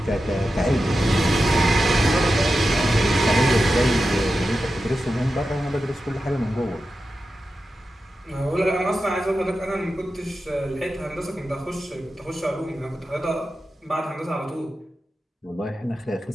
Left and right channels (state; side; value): normal; both; correlation 0.91